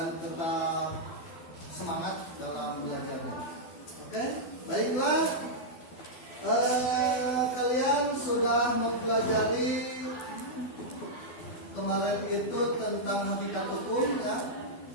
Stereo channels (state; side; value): late; right; 12 ms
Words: tetap semangat dalam belajarnya. Oke, baiklah. Kalian sudah mempelajari kemarin itu tentang hakikat hukum ya.